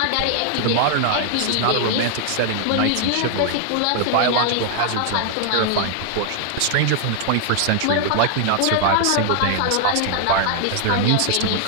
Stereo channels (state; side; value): different; both; correlation 0.00